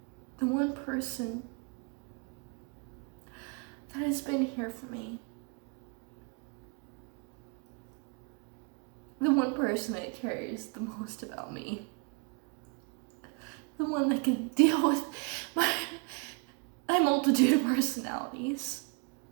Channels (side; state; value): left; quieter; 35.2 dB